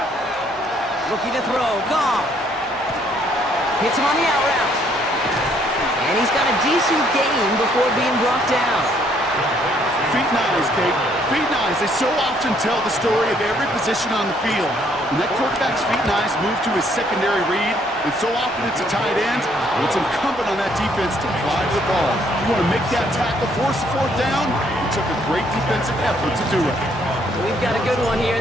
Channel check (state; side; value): normal; both; correlation 0.67